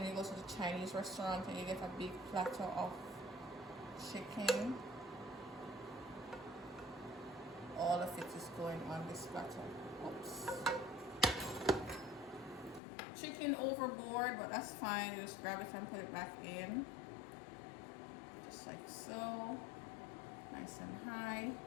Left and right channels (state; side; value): drops out; right; at 12.8 s